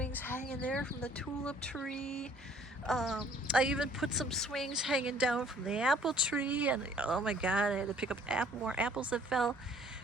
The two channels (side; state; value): both; normal; correlation 0.57